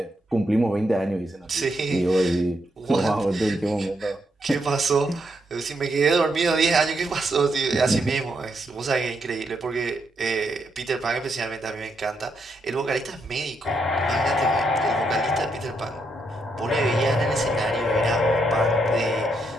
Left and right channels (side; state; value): both; normal; correlation 0.79